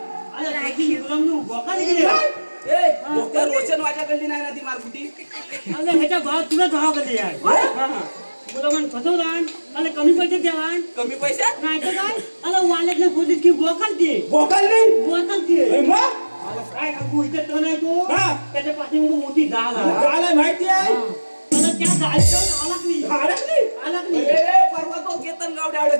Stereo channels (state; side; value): inverted; both; correlation -1.00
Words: गायची बोकाली गेली रोशन वाजाकडली नाही ना ती मारकुटी अरे ह्याच्या भाव तुला भाव कधी आहे तुला म्हण फसवला अरे कमी पैसे द्यावा कमी पैसे नाही तर काय अरे वाड्यातून सोडली की बोकालते काय सांगू इथे तो नाही तो त्याच्या पाठीमागे मोठी डाल आहे माहिती आहे त्या डाळीचं अडकली परवा तो केतन गावडे